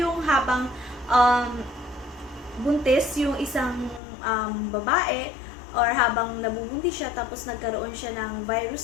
habang buntis yung isang babae or habang nabubuntis siya tapos nagkaroon siya ng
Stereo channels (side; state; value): right; drops out; at 4.0 s